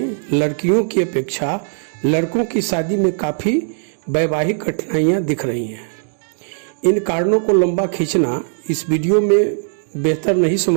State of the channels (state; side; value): silent; left; digital silence